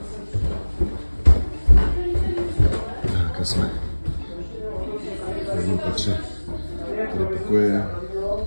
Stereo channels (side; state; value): both; inverted; correlation -1.00